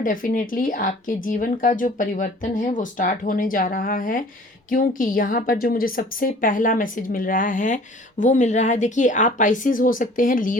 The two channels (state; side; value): normal; both; correlation 0.50